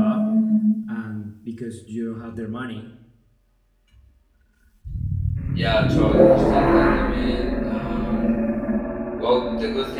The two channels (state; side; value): identical; both; correlation 1.00